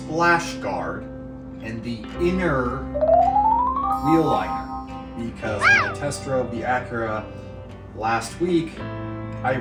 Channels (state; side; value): identical; both; correlation 1.00